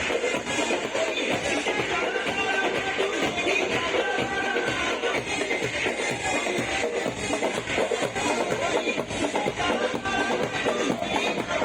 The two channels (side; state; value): right; noise; hum, 27 dB below the sound